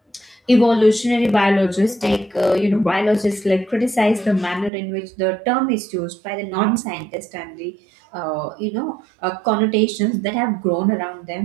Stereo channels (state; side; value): drops out; left; at 4.7 s